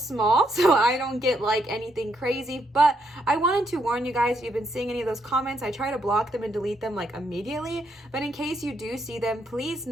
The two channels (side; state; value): both; normal; correlation 0.76